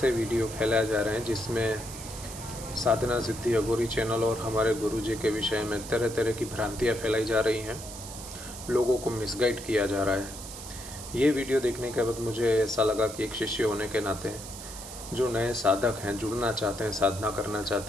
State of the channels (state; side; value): noise; right; hiss, 12 dB below the sound